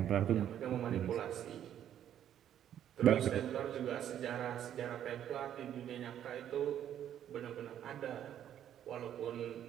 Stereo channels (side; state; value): left; quieter; 10.4 dB